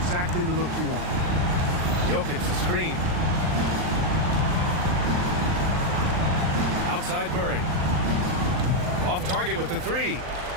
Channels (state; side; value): late; left; 39 ms